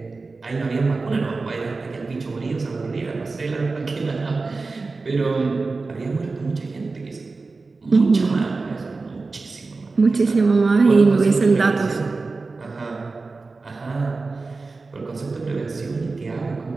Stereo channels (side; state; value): left; quieter; 3.9 dB